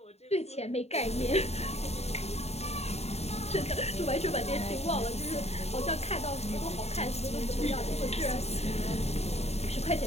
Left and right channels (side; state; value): right; late; 0.31 ms